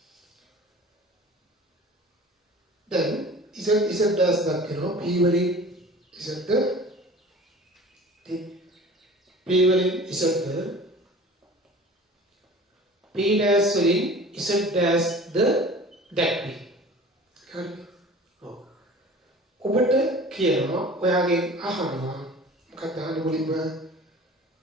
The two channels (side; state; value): both; normal; correlation 0.42